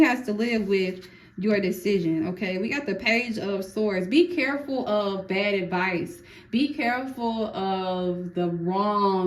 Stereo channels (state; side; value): identical; both; correlation 1.00